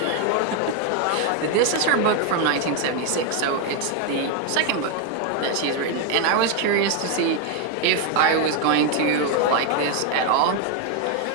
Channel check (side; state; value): both; different; correlation 0.01